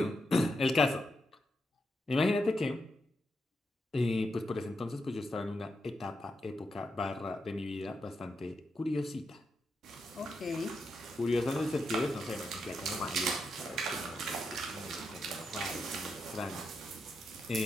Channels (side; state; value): both; normal; correlation 0.84